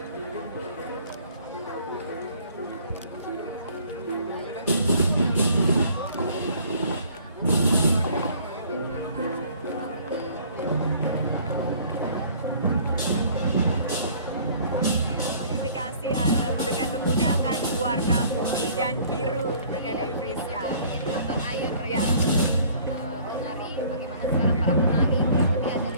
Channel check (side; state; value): both; inverted; correlation -0.54